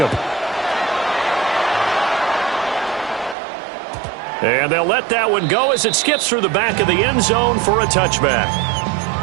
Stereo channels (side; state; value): left; drops out; at 3.4 s